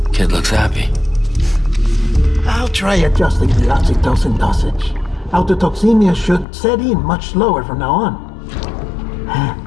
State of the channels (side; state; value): right; drops out; at 6.5 s